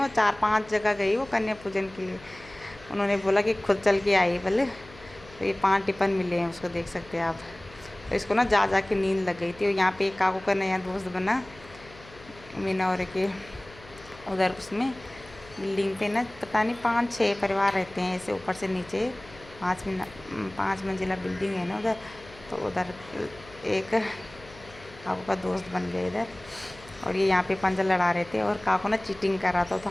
4-5 जगह गई वो कन्या पूजन के लिए, उन्होंने बोला कि खुद चल के आई बोले। तो ये 5 टिफ़िन मिले हैं उसको, देख सकते हैं आप। तो इसको ना जा के नींद लग गई थी। और यहाँ पे एक काकू का नया दोस्त बना मीना और के उधर, उसमें बिल्डिंग पे ना पता नहीं 5-6 परिवार रहते हैं ऐसे, ऊपर से नीचे 5 मंजिला बिल्डिंग है ना उधर। तो उधर एक काकू का दोस्त बन गया इधर। और ये यहाँ पे पंजा लड़ा रहे थे, और काकू ना चीटिंग कर रहा था, तो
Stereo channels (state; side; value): noise; left; hum, 21 dB below the sound